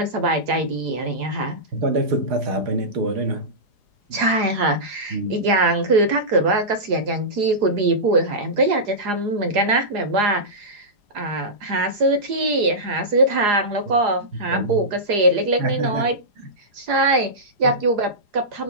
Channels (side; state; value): left; late; 4.8 ms